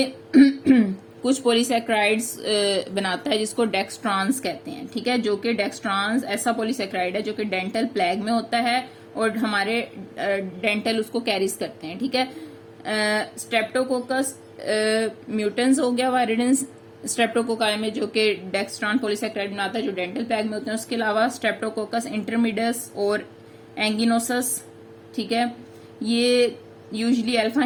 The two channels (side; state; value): both; identical; correlation 1.00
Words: कुछ पॉलीसैक्राइड्स बनाता है जिसको डेक्सट्रॉन्स कहते हैं, ठीक है, जो कि डेक्सट्रॉन्स ऐसा पॉलीसैक्राइड है जो कि डेंटल प्लैग में होता है और हमारे डेंटल उसको कैरीज करते हैं, ठीक है। स्ट्रेप्टोकोकस म्यूटेंस हो गया वायरिडिन स्ट्रेप्टोकोकाई में जो कि डेक्सट्रॉन पॉलीसैक्राइड बनाता है जो डेंटल प्लैग में होते हैं। उसके अलावा स्ट्रेप्टोकोकस इंटरमीडियस और एंगिनोसस, ठीक है, ये यूजुअली अल्फा